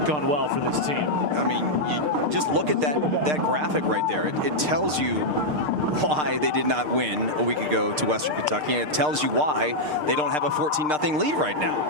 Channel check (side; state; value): left; late; 6.6 ms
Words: gone well for this team. I mean, you just look at that graphic right there. It tells you why they did not win a week ago to Western Kentucky, and it tells you why they don't have a 14-0 lead right now.